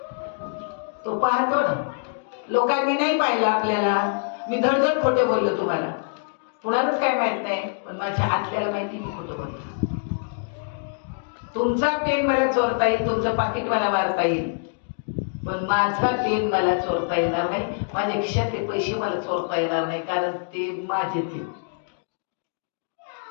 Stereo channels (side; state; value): right; silent; digital silence